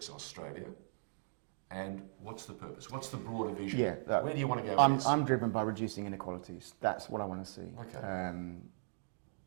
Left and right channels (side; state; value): left; silent; digital silence